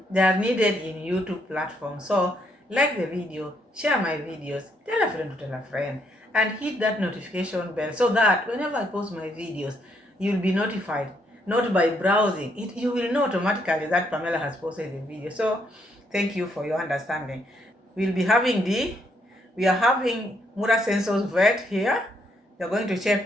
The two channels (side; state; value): both; normal; correlation 0.73